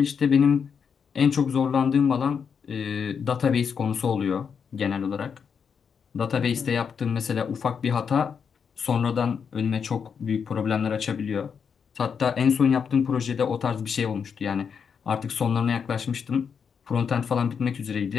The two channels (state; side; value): quieter; right; 6.6 dB